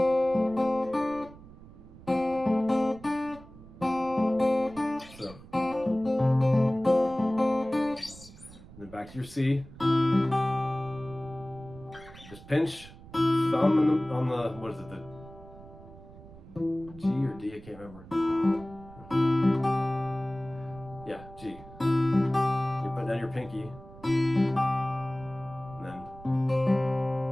so, and then back to your C. Just pinch thumb on the what is it, the G or D? I can't remember. Yeah, G. You put down your pinky.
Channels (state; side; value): noise; right; rumble, 19 dB below the sound